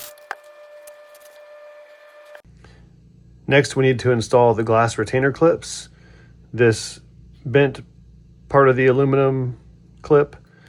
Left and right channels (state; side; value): identical; both; correlation 1.00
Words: Next, we need to install the glass retainer clips. This bent part of the aluminum clip